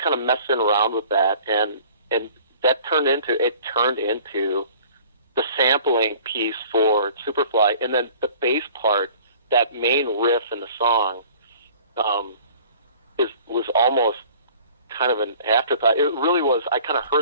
of messing around with that, and that turned into the sampling piece for Superfly, and then the bass part, that main riff in the song, was almost kind of an afterthought. It really was. I kind of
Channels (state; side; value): inverted; both; correlation -0.49